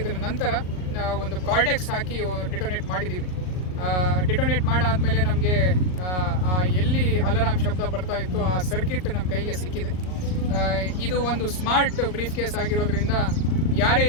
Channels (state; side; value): late; right; 38 ms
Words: ನಂತರ ಒಂದು ಕಾರ್ಡೆಕ್ಸ್ ಹಾಕಿ ಡಿಟೋನೇಟ್ ಮಾಡಿದ್ದೀವಿ. ಡಿಟೋನೇಟ್ ಮಾಡಾದಮೇಲೆ ನಮಗೆ ಎಲ್ಲಿ ಅಲಾರಾಮ್ ಶಬ್ದ ಬರ್ತಾ ಇತ್ತು ಆ ಸರ್ಕಿಟ್ ನಮ್ಮ ಕೈಗೆ ಸಿಕ್ಕಿದೆ. ಇದು ಒಂದು ಸ್ಮಾರ್ಟ್ ಬ್ರೀಫ್ ಕೇಸ್ ಆಗಿರೋದ್ರಿಂದ ಯಾರೇ